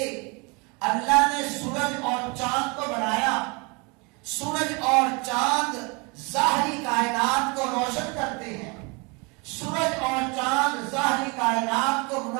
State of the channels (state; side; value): quieter; left; 29.7 dB